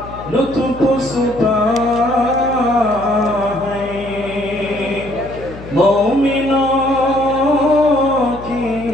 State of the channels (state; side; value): noise; left; hum, 15 dB below the sound